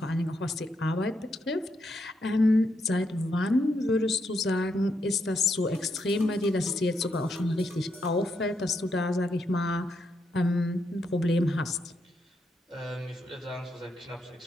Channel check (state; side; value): normal; both; correlation 0.80